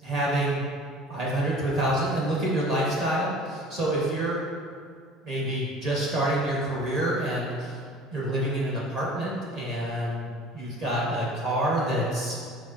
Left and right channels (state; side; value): normal; both; correlation 0.45